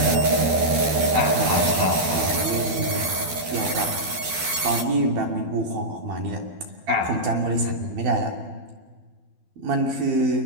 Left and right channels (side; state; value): left; late; 12 ms